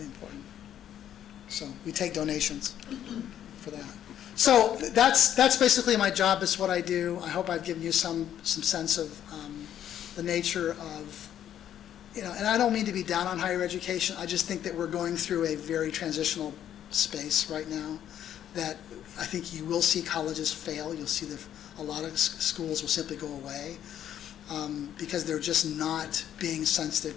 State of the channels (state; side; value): quieter; right; 10.5 dB